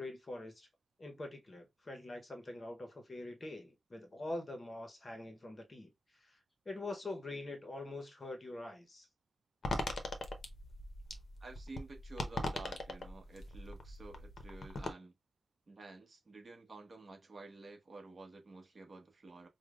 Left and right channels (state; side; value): normal; both; correlation 0.87